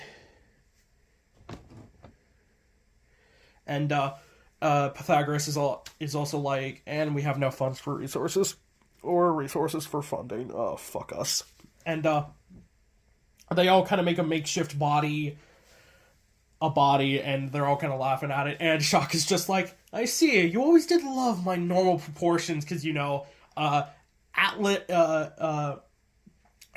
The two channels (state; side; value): identical; both; correlation 1.00